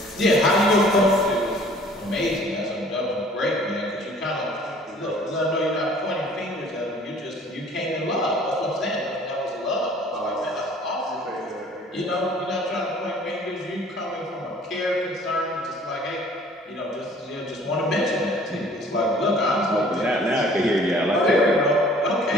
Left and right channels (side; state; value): both; normal; correlation 0.53